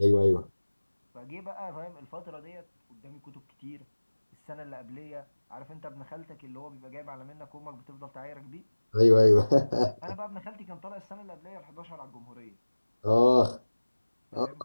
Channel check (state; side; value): inverted; both; correlation -1.00